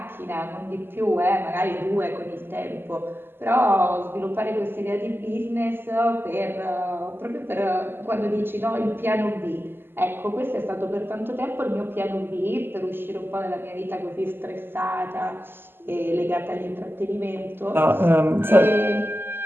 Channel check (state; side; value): late; left; 0.10 ms